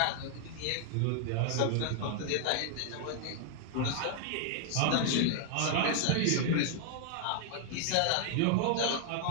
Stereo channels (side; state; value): both; different; correlation 0.00